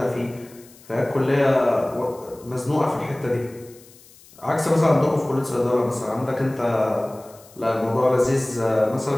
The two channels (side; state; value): left; noise; hiss, 24 dB below the sound